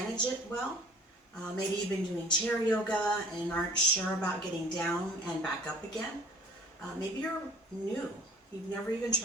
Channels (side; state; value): both; normal; correlation 0.51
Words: it well. Maybe you've been doing chair yoga and aren't sure about getting down and back up again. Maybe you're new. You've never even